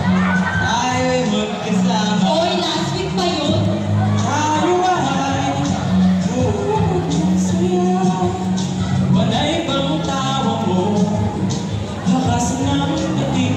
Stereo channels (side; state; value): both; identical; correlation 1.00